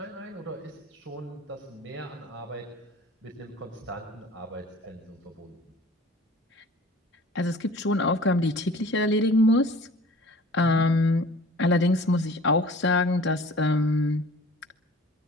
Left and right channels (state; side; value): normal; both; correlation 0.46